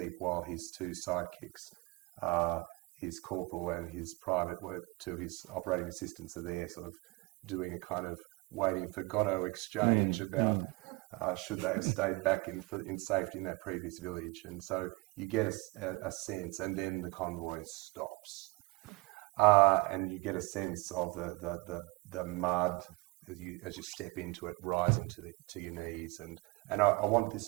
while his two sidekicks, his corporal and his private, two of his operating assistants, are there sort of doing a kind of waiting for Godot exchange about should they have stayed back in safety in that previous village. And so you get a sense, and then the convoy stops. And you get a sense of the mud as you step into it, rising to your knees. And I want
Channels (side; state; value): left; quieter; 24.0 dB